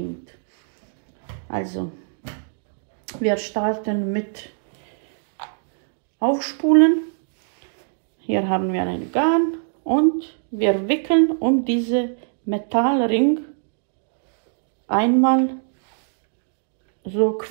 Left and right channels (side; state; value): left; silent; digital silence